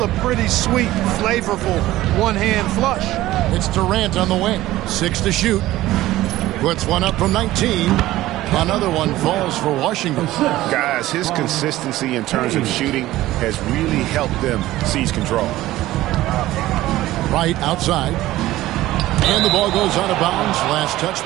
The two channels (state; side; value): quieter; left; 16.0 dB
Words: a pretty sweet, flavorful one-hand flush. It's Durant on the wing. 6 to shoot. Puts one up from 19. Another one falls for Washington. Guys, his consistency in terms of shooting has really helped them seize control. Wright outside. And the ball goes out of bounds. Last